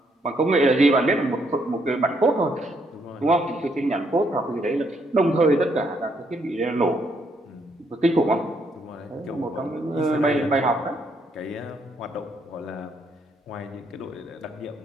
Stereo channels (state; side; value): normal; both; correlation 0.73